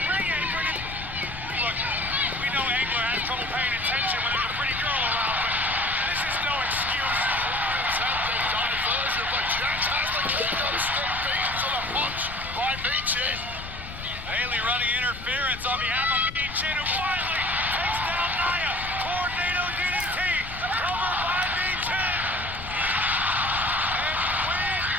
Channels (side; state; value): left; noise; rumble, 12 dB below the sound